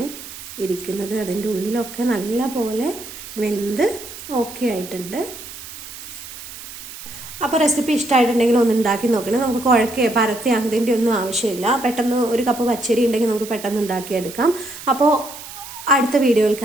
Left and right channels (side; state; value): right; noise; hiss, 13 dB below the sound